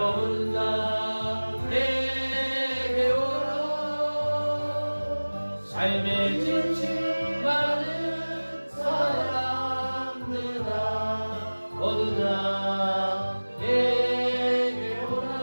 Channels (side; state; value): both; inverted; correlation -1.00